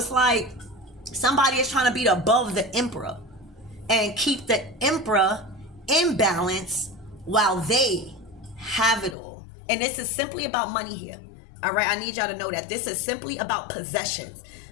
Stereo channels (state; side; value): drops out; right; at 9.2 s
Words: like somebody is trying to be above the Emperor and keep the Emperor in balance while they have it all. And this is simply about money here. All right, I need y'all to know that this is simply about possessions.